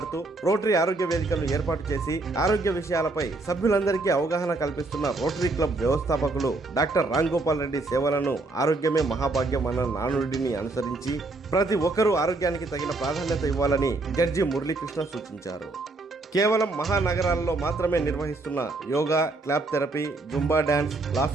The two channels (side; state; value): left; quieter; 3.2 dB